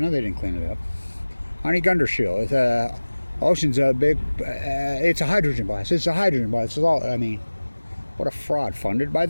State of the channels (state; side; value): inverted; both; correlation -1.00